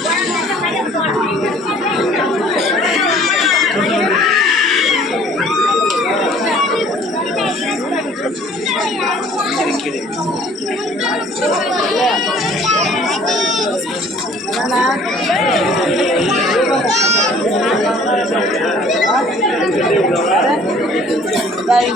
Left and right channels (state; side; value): normal; both; correlation 0.54